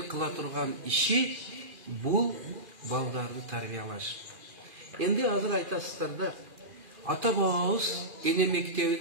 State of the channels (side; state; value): left; late; 2.4 ms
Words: kıla turgan işi bu baldarını tarbiyalaş. Endi hazır aytasızlar da ata babamız ene